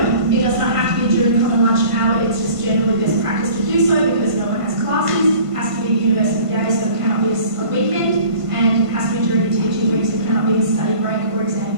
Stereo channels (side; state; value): left; late; 1.5 ms